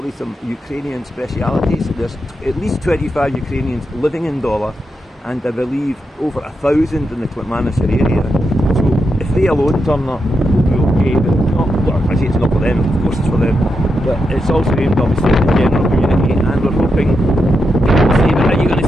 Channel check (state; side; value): normal; both; correlation 0.85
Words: some Ukrainian specialities. There's at least 25 Ukrainians living in Dollar, and I believe over 1,000 in the Klitmanashir area. So if they alone turn up, we'll be UK, but it's not, well, I say it's not for them, of course it's for them, but it's also aimed obviously at the general community, and we're hoping people say, but are you going to